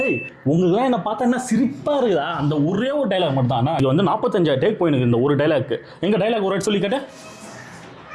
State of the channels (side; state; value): both; identical; correlation 1.00